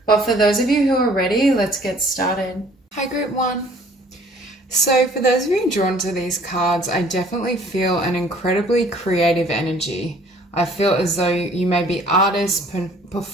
But for those of you who are ready, let's get started. Hi, Group 1. So for those of you drawn to these cards, I definitely feel an incredibly creative energy. I feel as though you may be artists,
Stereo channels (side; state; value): both; normal; correlation 0.55